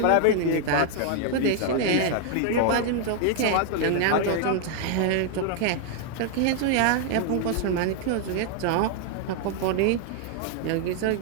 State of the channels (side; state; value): both; different; correlation 0.00